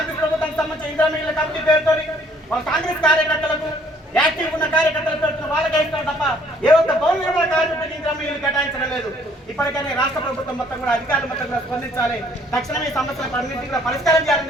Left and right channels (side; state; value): both; normal; correlation 0.61